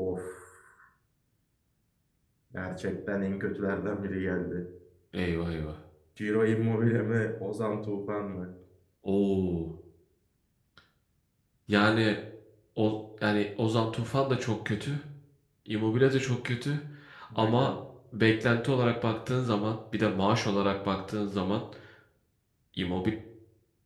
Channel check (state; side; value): identical; both; correlation 1.00